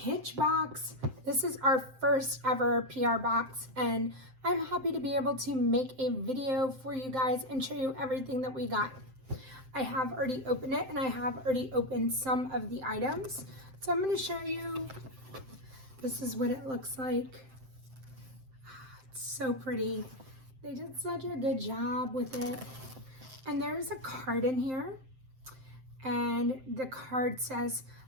box. This is our first ever PR box and I'm happy to be able to make a video for you guys and show you everything that we got. I have already opened it and I have already opened some of the items. So I'm going to show you, this is what it looks like. It's so pretty. They did such a good job with it. And there's a card in here. And the card says,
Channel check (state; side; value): late; left; 7.7 ms